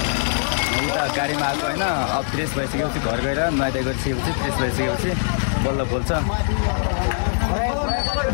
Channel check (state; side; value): silent; right; digital silence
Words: उता गाडीमा आएको होइन अब फ्रेस भइसकेपछि घर गएर नुहाइ गरिसकेपछि फ्रेस भइसकेपछि बल्ल बोल्छ